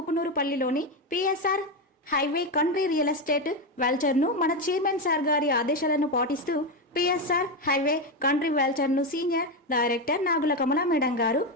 PSR highway country real estate వెల్చర్ను మన చైర్మన్ సార్ గారి ఆదేశాలను పాటిస్తూ పిఎస్ఆర్ హైవే కంట్రీ వెల్చర్ను senior director Nagula Kamala madam గారు,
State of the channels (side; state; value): both; normal; correlation 0.11